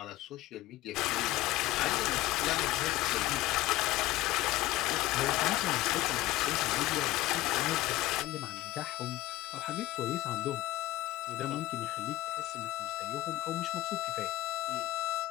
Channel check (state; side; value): quieter; right; 16.9 dB